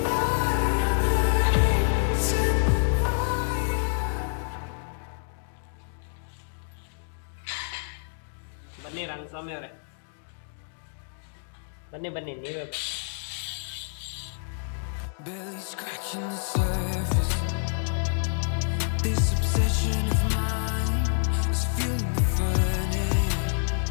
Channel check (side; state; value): right; silent; digital silence